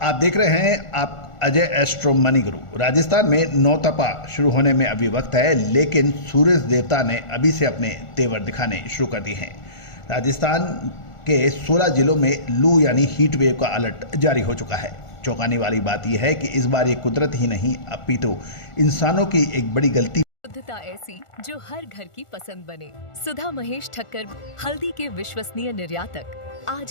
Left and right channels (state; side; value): late; right; 1.4 ms